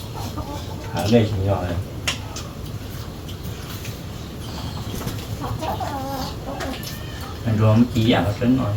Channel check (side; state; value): both; identical; correlation 1.00